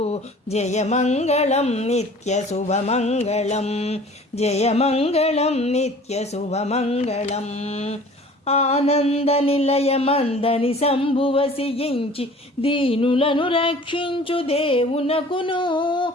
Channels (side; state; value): both; normal; correlation 0.47